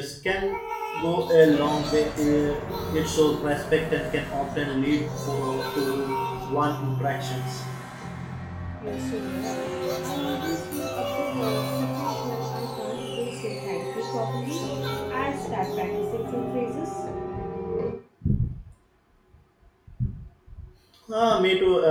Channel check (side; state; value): both; identical; correlation 1.00